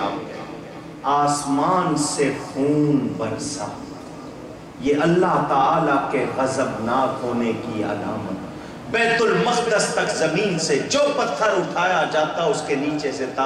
آپ، آسمان سے خون برسا، یہ اللہ تعالیٰ کے غضبناک ہونے کی علامت۔ بیت المقدس تک زمین سے جو پتھر اٹھایا جاتا اس کے نیچے سے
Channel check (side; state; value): both; identical; correlation 1.00